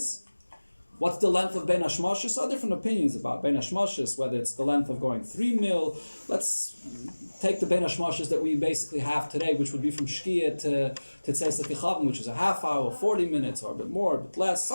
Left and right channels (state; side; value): inverted; both; correlation -1.00